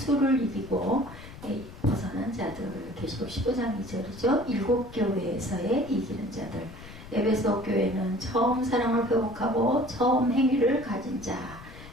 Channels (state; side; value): noise; left; rumble, 16 dB below the sound